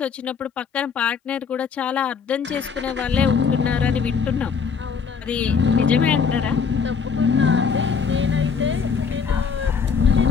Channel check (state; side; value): quieter; right; 6.0 dB